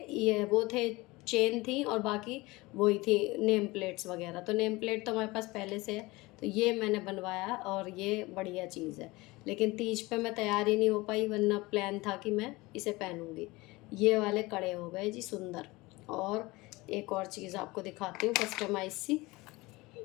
ये वो थे, चेन थी, और बाकी वही थी नेम प्लेट्स वगैरह। तो नेम प्लेट तो हमारे पास पहले से है, तो ये मैंने बनवाया और ये बढ़िया चीज़ है। लेकिन तीज पे मैं तैयार ही नहीं हो पाई, वरना प्लान था कि मैं इसे पहनूंगी। ये वाले कड़े हो गए जी सुंदर। और एक और चीज़ आपको दिखाती हूँ कस्टमाइज सी,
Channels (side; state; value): right; quieter; 22.0 dB